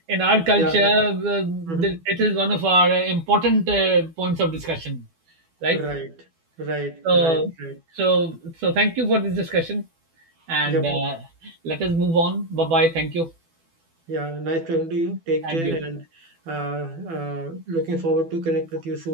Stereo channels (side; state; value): left; late; 12 ms